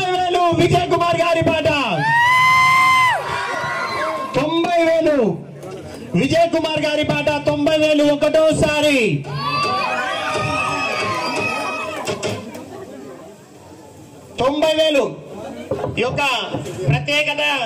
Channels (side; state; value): both; identical; correlation 1.00